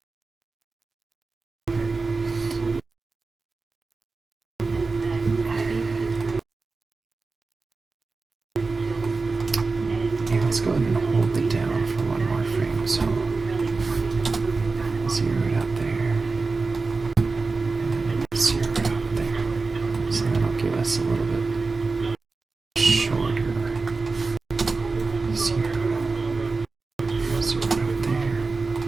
And let's go ahead and hold it down for one more frame. So 0 it out there, and 0 it out there. So that'll give us a little bit shorter. 0 out there,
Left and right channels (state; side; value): quieter; left; 4.0 dB